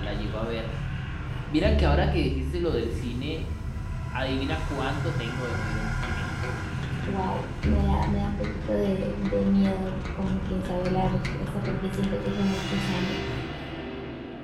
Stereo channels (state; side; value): identical; both; correlation 1.00